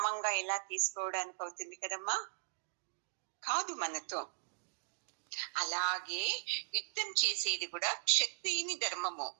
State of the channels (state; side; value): silent; left; digital silence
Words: ఎలా తీసుకోవడానికి అవుతుంది కదమ్మా? కాదు మనతో. అలాగే యుద్ధం చేసేది కూడా క్షత్రియుని ధర్మము.